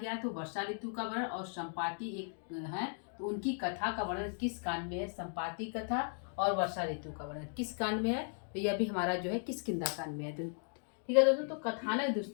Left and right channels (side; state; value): right; silent; 53 dB below the other